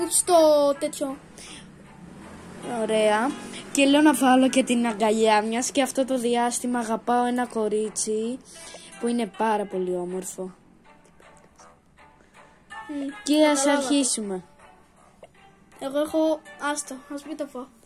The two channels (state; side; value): identical; both; correlation 1.00